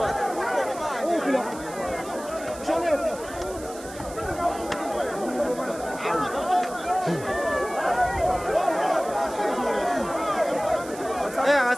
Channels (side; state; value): right; noise; hiss, 16 dB below the sound